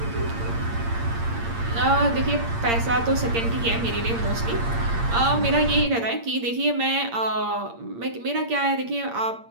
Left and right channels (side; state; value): left; late; 8.7 ms